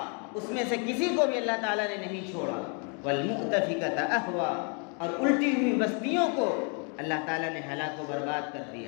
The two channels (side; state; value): right; quieter; 38.0 dB